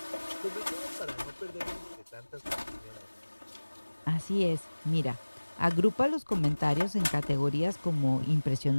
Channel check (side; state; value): both; inverted; correlation -1.00